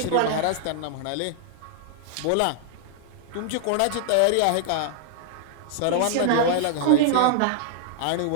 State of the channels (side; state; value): both; different; correlation -0.01